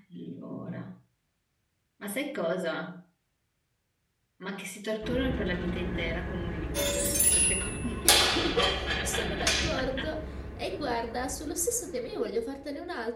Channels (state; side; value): identical; both; correlation 1.00